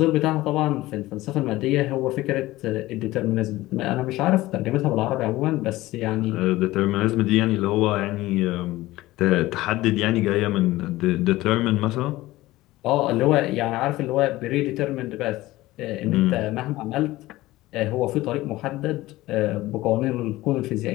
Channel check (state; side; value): quieter; right; 17.8 dB